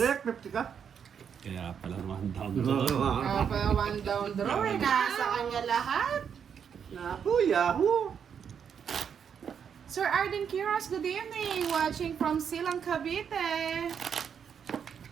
50 ka. Kaya pala one down draw. Kaya one down draw eh. Nasa kanya lahat. Naku, Yahoo! Sir Arden Quiroz, good evening. Watching from Silang, Cavite.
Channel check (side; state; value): left; quieter; 7.5 dB